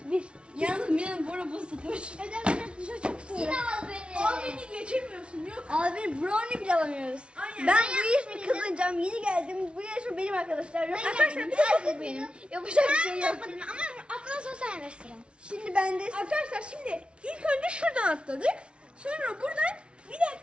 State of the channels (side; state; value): left; late; 0.058 ms